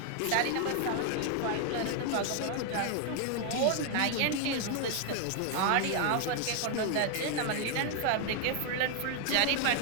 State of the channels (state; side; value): different; both; correlation 0.00